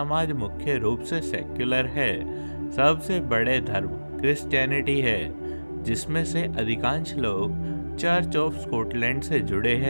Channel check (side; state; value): both; inverted; correlation -1.00